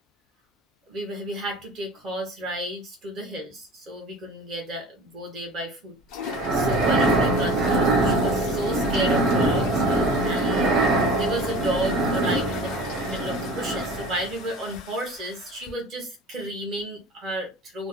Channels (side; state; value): both; normal; correlation 0.39